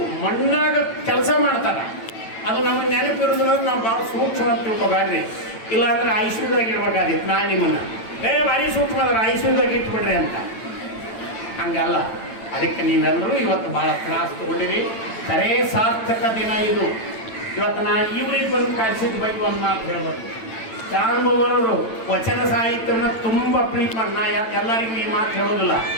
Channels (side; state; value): right; late; 9.0 ms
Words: ಮಣ್ಣಾಗ ಕೆಲಸ ಮಾಡ್ತಾರೆ. ಅದು ನಮಗೆ ನೆನಪಿರೋದಿಲ್ಲ. ನಾವು ಭಾಳ ಸೂಕ್ಷ್ಮ ಅಂತ ತಿಳ್ಕೊಬೇಡ್ರಿ. ಇಲ್ಲಾಂದ್ರೆ ಐಶ್ವರ್ಯದಾಗ ಇಡ್ಬೇಕಾದಿತ್ತು. ನಾನು ನಿಮ್ಮನ್ನು ಭಾರಿ ಸೂಕ್ಷ್ಮ ಅದ್ರ ಐಶ್ವರ್ಯದಾಗ ಇಟ್ಬಿಡ್ರಿ ಅಂತ. ಹಂಗಲ್ಲ. ಅದಕ್ಕೆ ನೀವೆಲ್ಲರೂ ಇವತ್ತು ಭಾಳ ತ್ರಾಸ ತಗೊಂಡಿರಿ. ಖರೇ ಸಾರ್ಥಕ ದಿನ ಇದು. ಇವತ್ತು ನಾನು ಇವ್ರಿಗೆ ಬಂದು ಕಳಿಸಿದ ಬಗ್ಗೆ ಒಂದು ಮಾತು ಹೇಳ್ಬೇಕು. ಚಾರುಮವರು ವಚನ ಸಾಹಿತ್ಯನ ತುಂಬ ಪ್ರೀತಿ ಮಾಡಿ, ನಾ ಎಲ್ಲರಿಗೂ ಈ ಮಾತು ಹೇಳೋದಿಲ್ಲ.